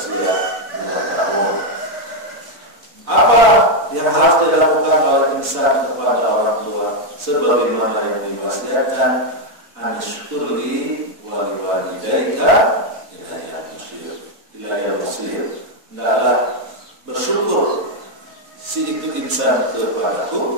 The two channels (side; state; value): left; late; 4.1 ms